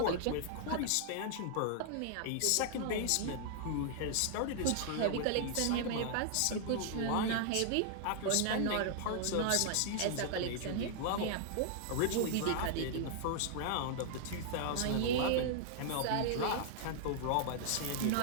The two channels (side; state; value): both; different; correlation -0.01